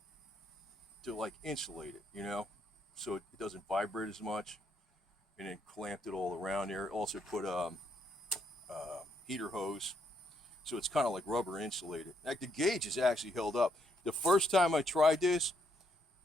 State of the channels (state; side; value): normal; both; correlation 0.74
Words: like insulate it, so it doesn't vibrate as much, and then clamped it all around there. Also put heater hose. So it's kind of like rubber insulated. Like the gauge is actually held up. The first time I tried this,